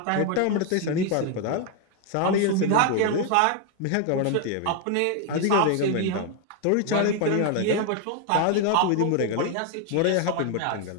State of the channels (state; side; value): different; both; correlation 0.01